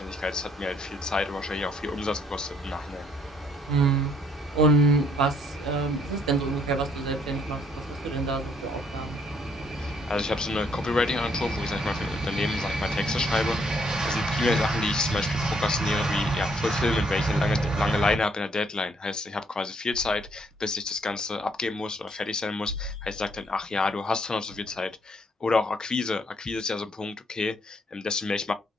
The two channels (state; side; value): normal; both; correlation 0.67